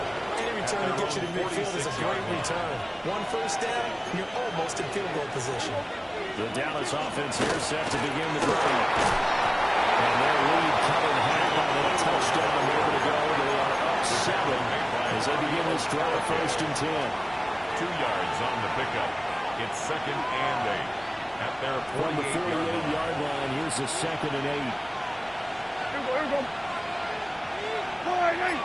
Any return that gets you to midfield is a great return. One first down, you're almost in field goal position. The Dallas offense here set to begin the drive. And their lead cut in half on that touchdown a minute ago. They are up 7 as they begin this drive, 1st and 10. 2 yards on the pickup. It's 2nd and 8. At their From the 48-yard line, here's the 2nd and 8. Here we go.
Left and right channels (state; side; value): identical; both; correlation 1.00